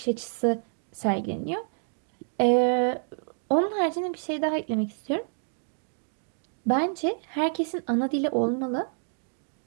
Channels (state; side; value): silent; left; digital silence